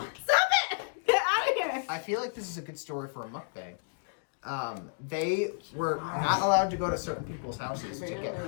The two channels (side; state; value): right; silent; digital silence